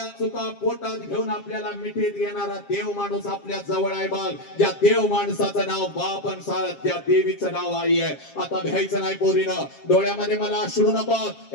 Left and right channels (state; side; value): late; right; 7.4 ms